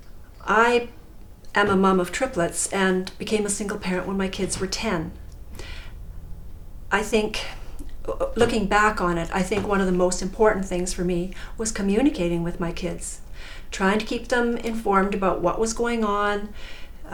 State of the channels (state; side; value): identical; both; correlation 1.00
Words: I am a mom of triplets and became a single parent when my kids were 10. I think, looking back on it, I think one of the most important things for me was communicating with my kids, trying to keep them informed about what was going on.